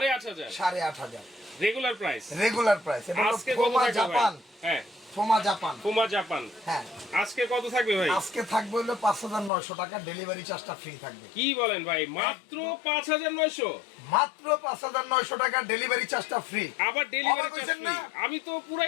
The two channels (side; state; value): right; drops out; at 9.5 s